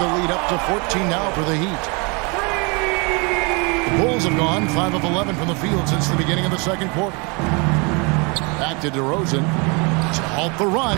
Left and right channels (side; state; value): left; quieter; 30.6 dB